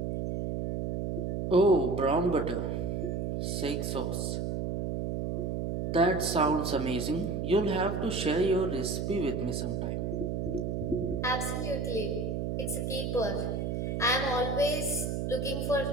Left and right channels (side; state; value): right; noise; hum, 1 dB below the sound